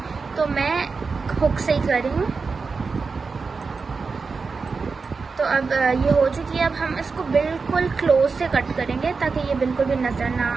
तो मैं हुक से ही कर रही हूँ। तो अब ये हो चुकी है। अब हम इसको बिल्कुल क्लोज से कट करेंगे ताकि ये बिल्कुल भी नज़र ना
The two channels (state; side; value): quieter; left; 4.7 dB